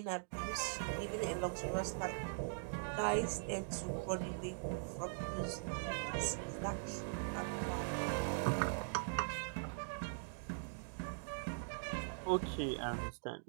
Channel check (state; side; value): silent; left; digital silence